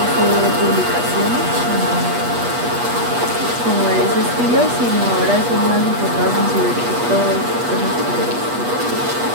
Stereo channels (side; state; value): left; late; 8.3 ms